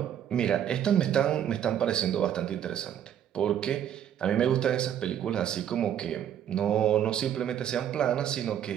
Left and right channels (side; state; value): left; quieter; 9.9 dB